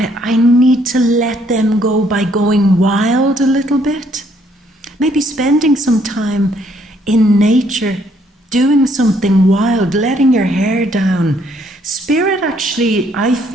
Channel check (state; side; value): normal; both; correlation 0.67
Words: need to let them go by going wild a little bit. Maybe spending some time in nature, doing something wild, letting your hair down. Spirit actually, I